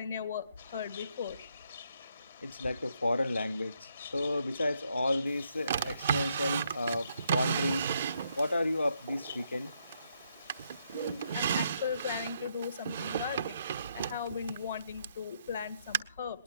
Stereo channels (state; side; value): inverted; both; correlation -0.75